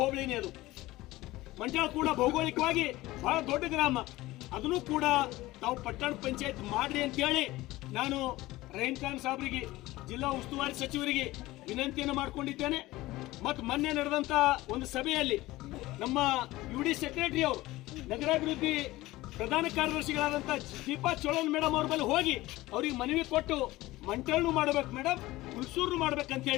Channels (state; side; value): quieter; right; 18.3 dB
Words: ಅದು ಮಂಟಾಳ್ ಕೂಡ ಭೌಗೋಳಿಕವಾಗಿ ಬಹಳ ದೊಡ್ಡ ಗ್ರಾಮ. ಅದನ್ನು ಕೂಡ ತಾವು ಪಟ್ಟಣ ಪಂಚಾಯತ್ ಮಾಡ್ರಿ ಅಂತ ಹೇಳಿ ನಾನು ರಹೀಂ ಖಾನ್ ಸಾಹೇಬರಿಗೆ, ಜಿಲ್ಲಾ ಉಸ್ತುವಾರಿ ಸಚಿವರಿಗೆ ವಿನಂತಿಯನ್ನು ಮಾಡಿಕೊಂಡಿದ್ದೇನೆ. ಮತ್ತು ಮೊನ್ನೆ ನಡೆದಂತ ಒಂದು ಸಭೆಯಲ್ಲಿ ನಮ್ಮ ಯುಡಿ ಸೆಕ್ರೆಟರಿ ಅವರು, ನಗರಾಭಿವೃದ್ಧಿ ಪ್ರಧಾನ ಕಾರ್ಯದರ್ಶಿಗಳಾದಂಥ ದೀಪಾ ಚೋಳನ್ ಮೇಡಮ್ ಅವ್ರ ಬಳಿ ಹೋಗಿ ಅವ್ರಿಗೆ ಮನವಿ ಕೊಟ್ಟು ಮಂಟಾಳ್ನು ಮಾಡ್ಬೇಕು ಮೇಡಮ್, ಹುಲ್ಸೂರು ಮಾಡ್ಬೇಕಂತ